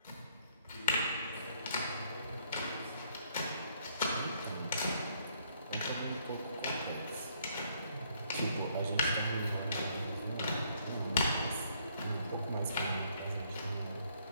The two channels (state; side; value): inverted; both; correlation -0.67